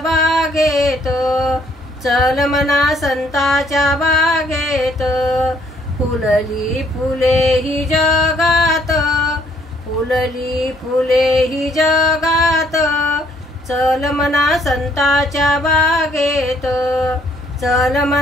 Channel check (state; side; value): normal; both; correlation 0.65